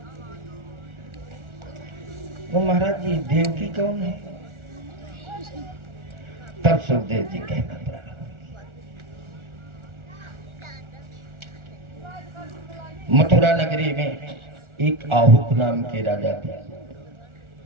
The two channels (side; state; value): left; late; 1.4 ms